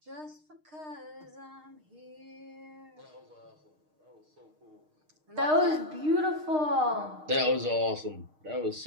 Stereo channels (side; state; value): left; late; 6.5 ms